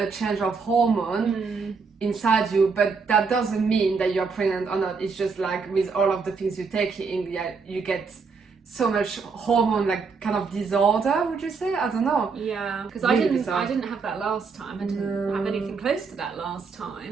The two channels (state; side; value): quieter; left; 5.0 dB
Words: change of hormone inside you, but that doesn't mean that you're pregnant or not. It's just like with all of the things you take in, you get so much hormone, like kind of disorder, would you say? I don't know. Yeah, because Really I didn't have that last time. I didn't have anything close to that last